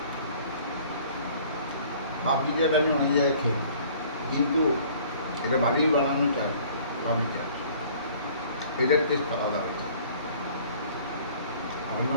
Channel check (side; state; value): both; inverted; correlation -0.53